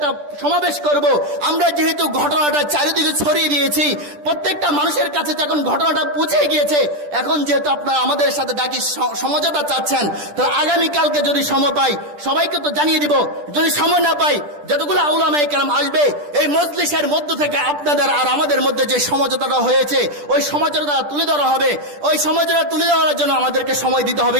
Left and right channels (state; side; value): late; left; 10 ms